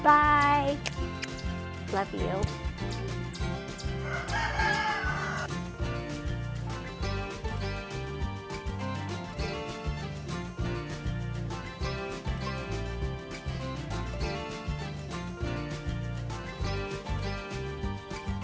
Bye. Love you.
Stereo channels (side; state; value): both; identical; correlation 1.00